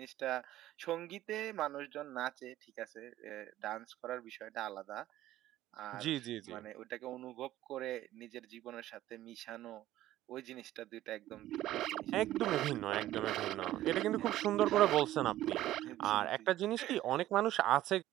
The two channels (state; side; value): quieter; left; 14.3 dB